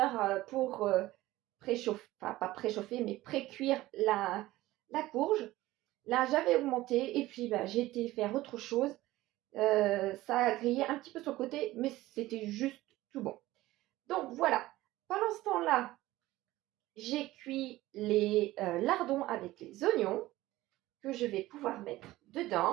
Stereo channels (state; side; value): quieter; left; 17.1 dB